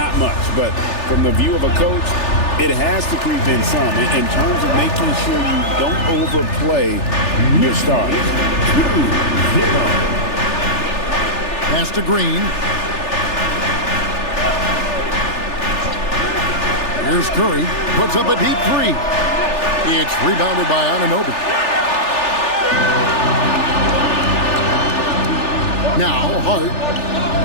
much. But from the view of a coach, it has to creep in some in terms of making sure you don't overplay your starters. 2-0. Pass to Green. Here's Curry. Puts up a deep 3. It's rebounded by Anunoby. Now Hart.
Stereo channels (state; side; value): late; right; 3.4 ms